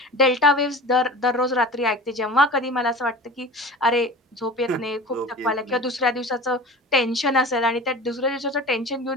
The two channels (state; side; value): normal; both; correlation 0.36